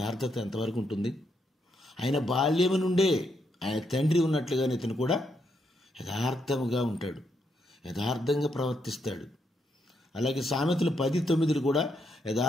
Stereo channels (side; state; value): both; normal; correlation 0.78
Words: ఎంతవరకు ఉంటుంది? ఆయన బాల్యము నుండే ఆయన తండ్రి ఉన్నట్లుగానే ఇతను కూడా యథార్థముగా ఉంటాడు, యథార్థంగా ప్రవర్తిస్తాడు. అలాగే సామెతలు 10:9 కూడా